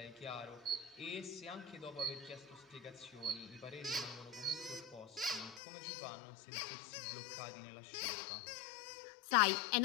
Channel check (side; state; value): right; drops out; at 5.6 s